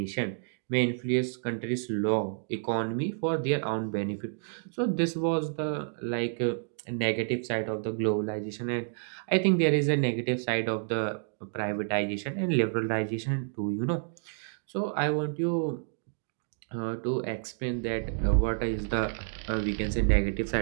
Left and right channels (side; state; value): left; silent; digital silence